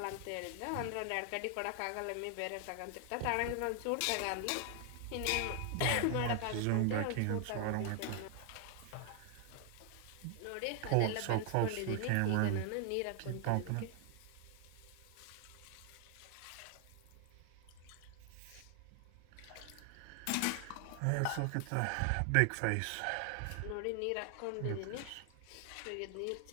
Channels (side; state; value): both; different; correlation 0.00